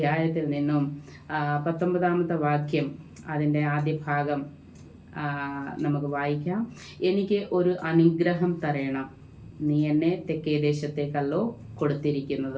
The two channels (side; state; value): both; identical; correlation 1.00